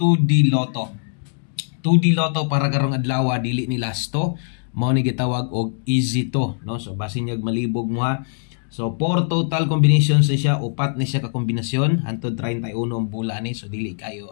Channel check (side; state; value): right; silent; digital silence